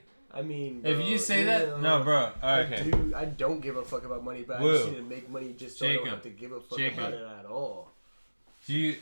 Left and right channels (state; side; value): inverted; both; correlation -1.00